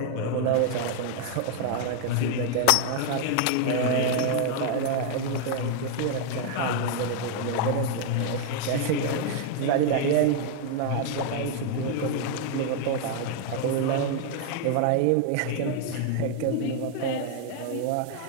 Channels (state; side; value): different; both; correlation 0.00